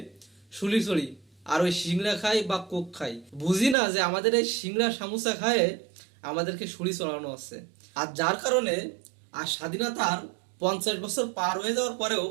শুলি চড়ি আর ওই সিংড়া খাই বা কোক খাই। বুঝি না যে আমাদের এই সিংড়া সামোসা খায় আমাদেরকে শুলি চড়ানো হচ্ছে। আর যার কারণে আর স্বাধীনতার 50 বছর পার হয়ে যাওয়ার পরেও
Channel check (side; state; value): left; drops out; at 3.8 s